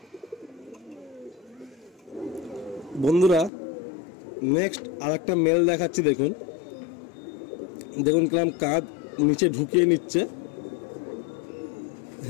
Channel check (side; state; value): right; drops out; at 3.5 s